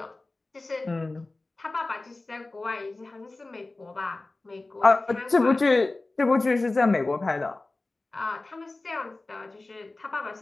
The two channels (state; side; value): quieter; right; 3.2 dB